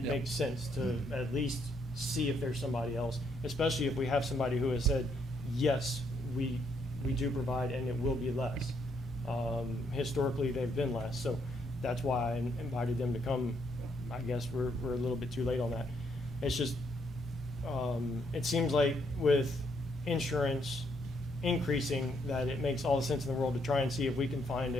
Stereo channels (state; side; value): normal; both; correlation 0.73